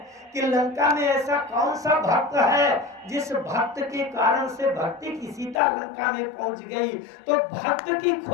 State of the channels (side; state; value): right; drops out; at 5.6 s